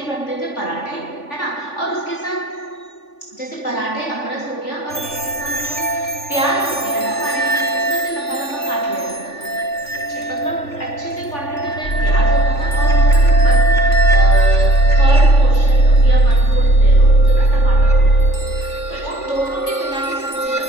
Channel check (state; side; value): late; right; 3.5 ms